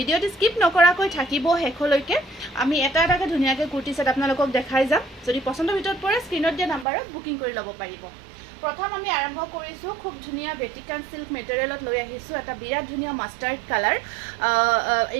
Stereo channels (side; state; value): left; drops out; at 6.9 s